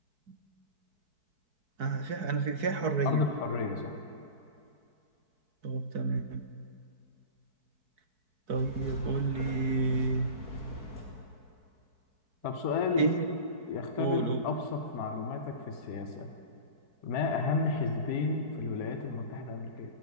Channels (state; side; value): late; left; 4.6 ms